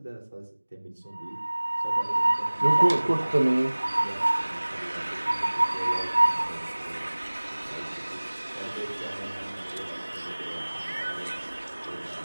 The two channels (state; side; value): inverted; both; correlation -1.00